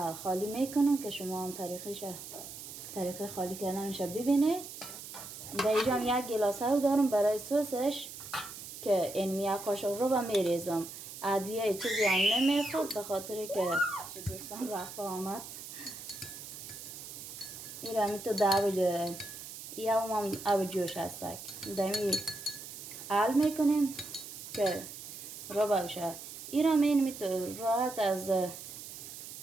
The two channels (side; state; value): right; noise; hiss, 11 dB below the sound